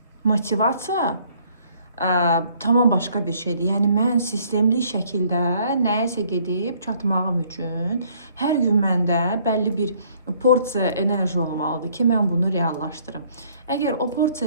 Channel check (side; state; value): both; inverted; correlation -0.62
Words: motivasiya tamam başqa bir şeydir. Yəni mən sistemli şəkildə nəyəsə gedib çatmağım üçün hər gün məndə bəlli bir porsiya enerji olmalıdır ki, mən bunu reallaşdırım. Əgər o